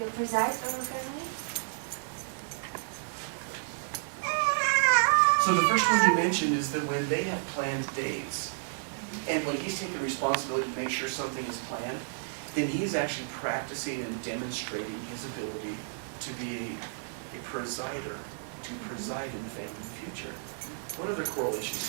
presides over family. So the first one you mentioned is that when they have planned dates, and when he's taking responsibility to make sure something is planned, then he's actually practicing and demonstrating his ability to be a presider, to preside in the family future. What other correlations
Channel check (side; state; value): left; silent; 57 dB below the other